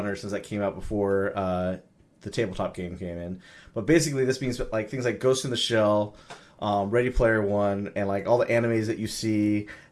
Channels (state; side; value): identical; both; correlation 1.00